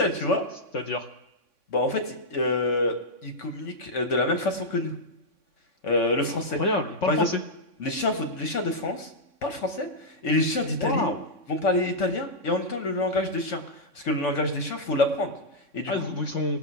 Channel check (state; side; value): late; right; 3.6 ms